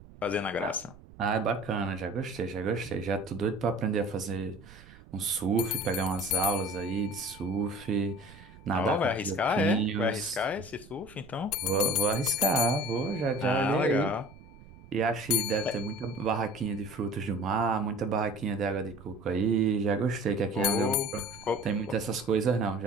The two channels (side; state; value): right; noise; rumble, 21 dB below the sound